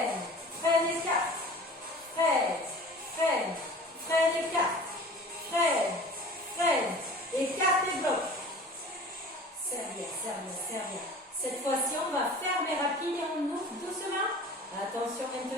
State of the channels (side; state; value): both; normal; correlation 0.42